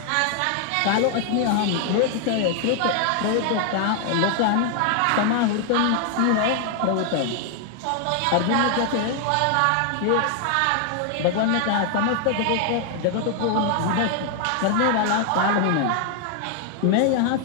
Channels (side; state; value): both; different; correlation 0.00